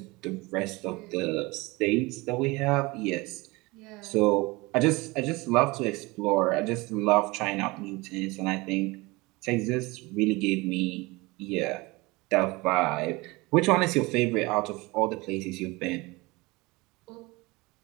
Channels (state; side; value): quieter; left; 23.5 dB